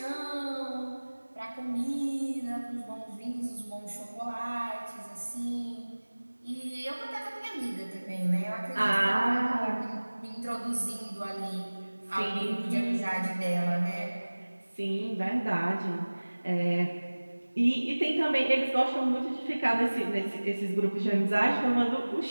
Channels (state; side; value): inverted; both; correlation -1.00